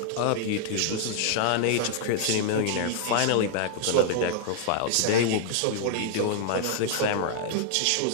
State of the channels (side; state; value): both; different; correlation 0.00